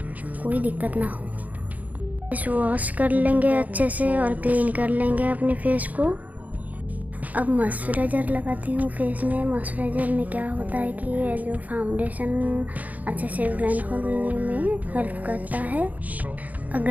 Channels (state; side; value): late; left; 0.077 ms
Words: कोई दिक्कत ना हो। फेस वॉश कर लेंगे अच्छे से और क्लीन कर लेंगे अपने फेस को। अब मॉइस्चराइज़र लगाती हूँ फेस में। मॉइस्चराइज़र में क्या होता है कि जो फाउंडेशन अच्छे से ब्लेंड होने में हेल्प करता है।